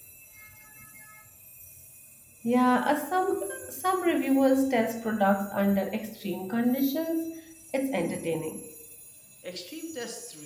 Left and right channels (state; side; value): identical; both; correlation 1.00